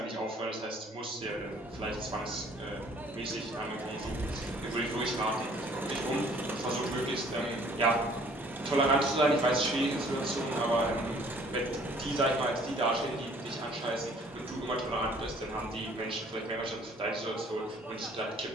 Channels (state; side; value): normal; both; correlation 0.57